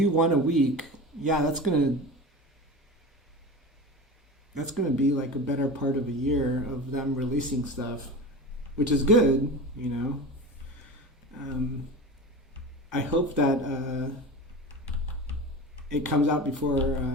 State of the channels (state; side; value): normal; both; correlation 0.31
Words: one a week, yeah, that's gonna be like a better part of a year of them releasing stuff, which is good, you know. Um, I hope that it comes out before